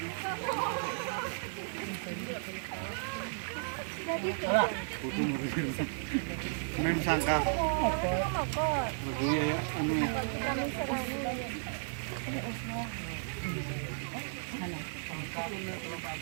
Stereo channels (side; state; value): left; silent; digital silence